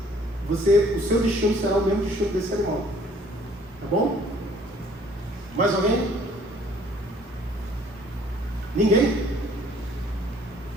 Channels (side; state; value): both; normal; correlation 0.58